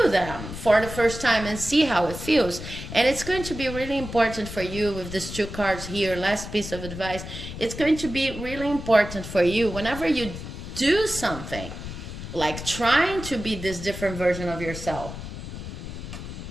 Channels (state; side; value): noise; left; rumble, 9 dB below the sound